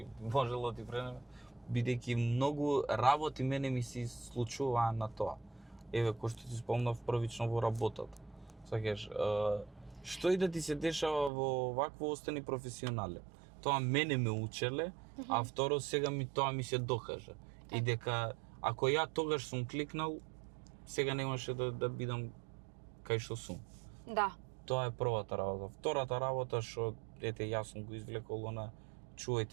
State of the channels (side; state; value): left; drops out; at 11.3 s